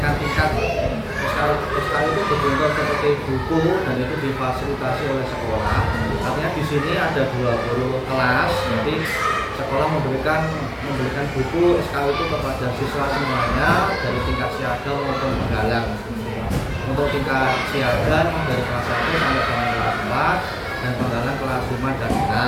tingkat. SKU itu berbentuk seperti buku dan itu difasilitasi oleh sekolah. Artinya di sini ada 20 kelas, jadi sekolah memberikan buku SKU itu kepada siswa semuanya dari tingkat siaga maupun penggalang. Untuk tingkat siaga dari kelas 1 sampai dengan kelas 4 dan penggalang kelas 5 dan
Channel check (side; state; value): both; identical; correlation 1.00